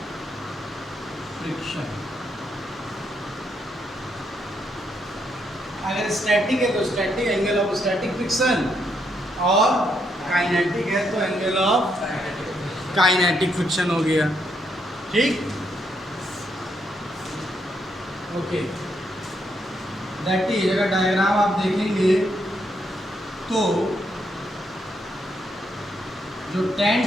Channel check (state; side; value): normal; both; correlation 0.77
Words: friction. अगर स्टैटिक है तो static angle of static friction, और काइनेटिक है तो एंगल ऑफ काइनेटिक फ्रिक्शन हो गया, ठीक। ओके, दैट इज, अगर डायग्राम आप देखेंगे तो जो tan